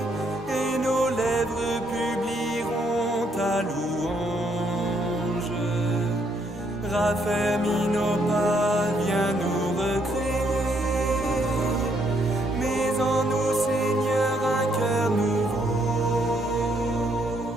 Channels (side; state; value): both; normal; correlation 0.72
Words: et nos lèvres publieront ta louange. Raffermis